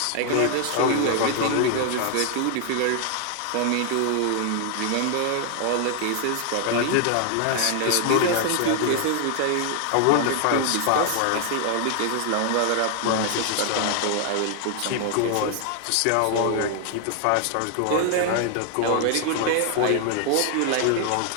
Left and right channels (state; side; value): different; both; correlation 0.00